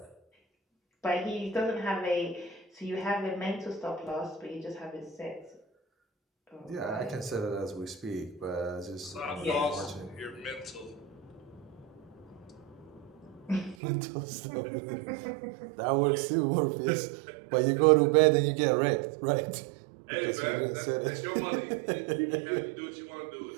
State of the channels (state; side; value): drops out; left; at 13.8 s